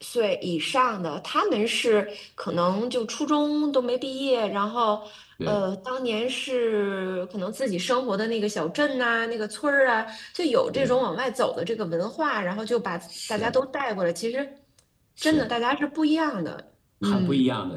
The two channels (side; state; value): both; identical; correlation 1.00